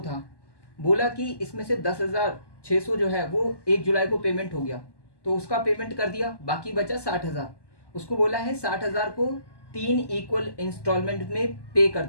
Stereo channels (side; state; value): right; late; 1.1 ms